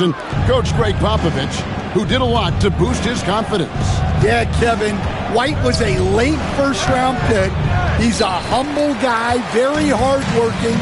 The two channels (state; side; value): identical; both; correlation 1.00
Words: and Coach Greg Popovich, who did a lot to boost his confidence. Yeah, Kevin, White was a late first-round pick. He's a humble guy, very hardworking.